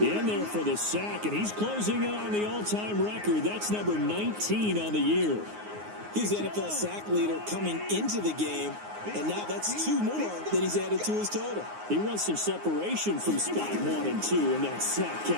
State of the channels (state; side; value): late; left; 9.6 ms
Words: there for the sack, and he's closing in on the all-time record. That's number 19 on the year. He's the NFL sack leader coming into the game. And now that's 2 more that he's added to his total. He wants some separation from spot 1 and 2 in that sack